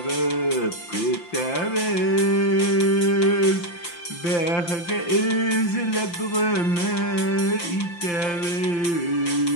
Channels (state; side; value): late; right; 5.8 ms